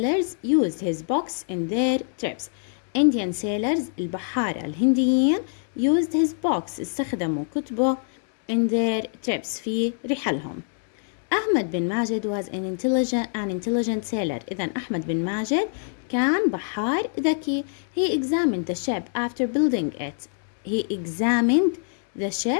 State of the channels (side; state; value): right; silent; digital silence